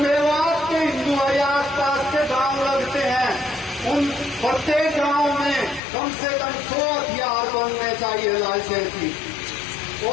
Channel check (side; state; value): right; drops out; at 5.8 s